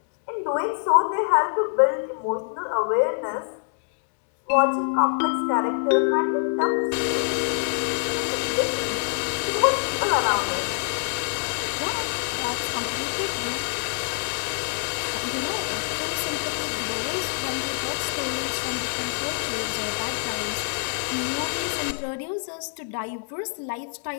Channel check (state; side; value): silent; right; digital silence